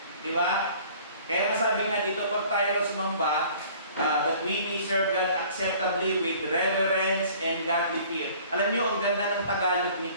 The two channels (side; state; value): both; inverted; correlation -0.51